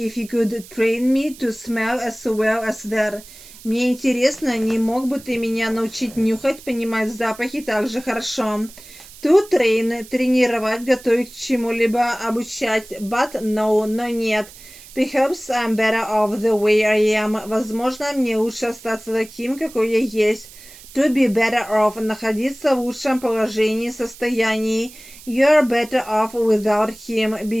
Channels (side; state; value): right; noise; hiss, 19 dB below the sound